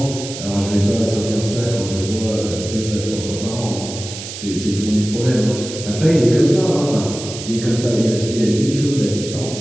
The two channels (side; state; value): right; noise; hiss, 10 dB below the sound